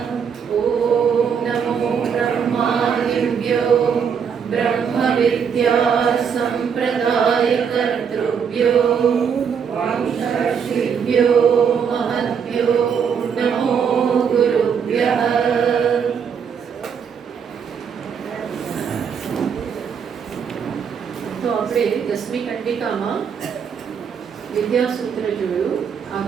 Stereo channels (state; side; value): quieter; left; 7.0 dB